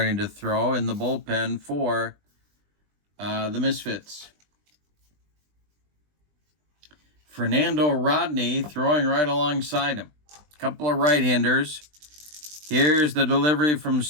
to throw in the bullpen for the Misfits. Fernando Rodney throwing right alongside him. A couple of right-handers. Here's the delivery from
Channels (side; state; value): left; late; 20 ms